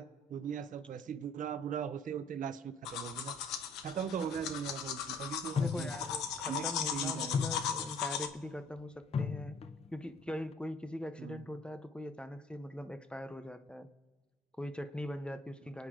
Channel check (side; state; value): both; normal; correlation 0.56